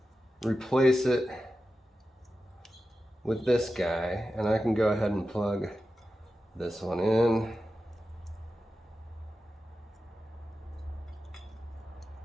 replace it with this guy, and I can go ahead and plug this one in.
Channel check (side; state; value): both; normal; correlation 0.92